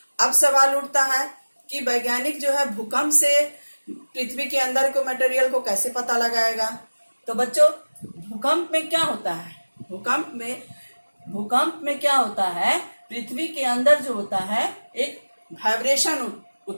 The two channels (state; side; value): inverted; both; correlation -1.00